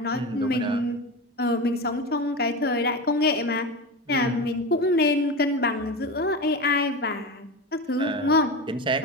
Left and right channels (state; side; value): normal; both; correlation 0.23